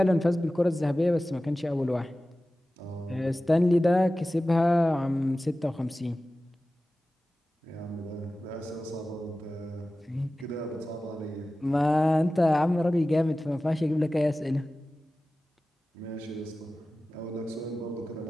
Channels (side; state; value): both; normal; correlation 0.96